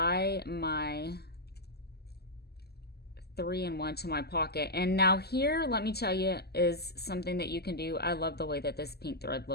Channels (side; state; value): right; late; 0.46 ms